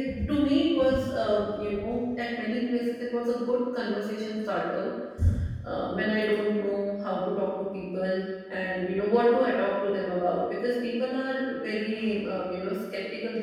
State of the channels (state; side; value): identical; both; correlation 1.00